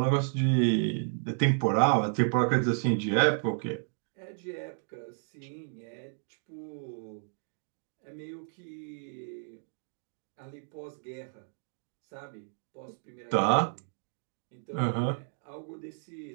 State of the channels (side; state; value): left; silent; digital silence